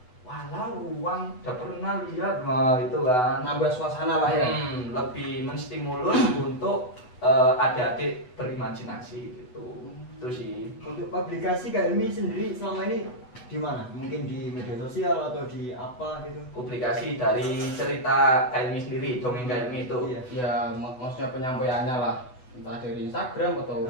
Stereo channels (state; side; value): late; right; 8.0 ms